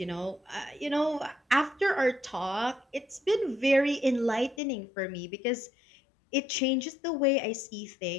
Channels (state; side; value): drops out; right; at 4.6 s